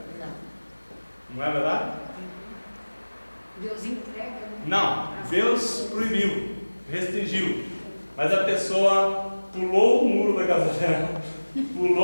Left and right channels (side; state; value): both; inverted; correlation -1.00